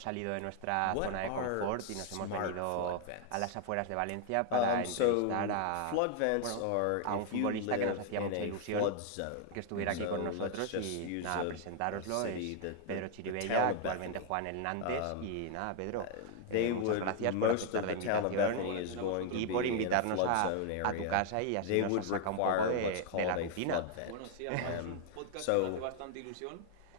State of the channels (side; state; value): both; different; correlation 0.00